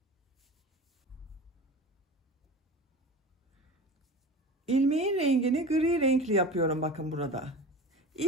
İlmeğin rengini gri renkli yapıyorum bakın burada.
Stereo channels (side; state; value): both; normal; correlation 0.33